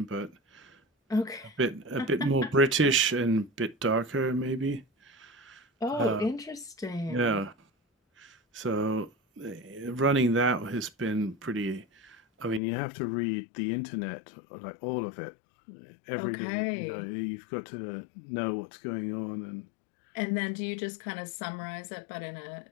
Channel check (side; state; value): right; drops out; at 12.6 s